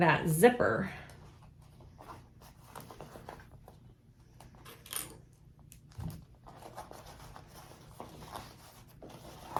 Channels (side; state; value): both; identical; correlation 1.00